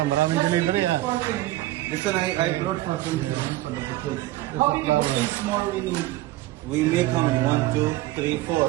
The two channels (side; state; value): left; quieter; 16.6 dB